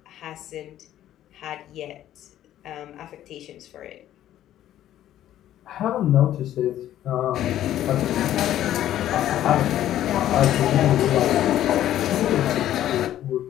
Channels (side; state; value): right; quieter; 12.3 dB